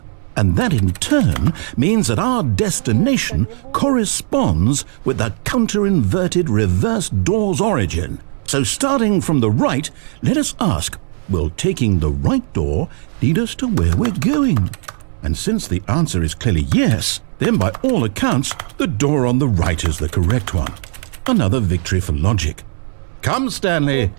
And that in turn means that our destination corresponds with the counter-inverted reverse door's origin. So starting from the right, let us ask, will taking the right door lead us to where we're going? And since the answer is clearly yes, then by all accounts, the door on the right is the correct one. Another victory for logic. Come, Stanley,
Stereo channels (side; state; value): left; silent; 58 dB below the other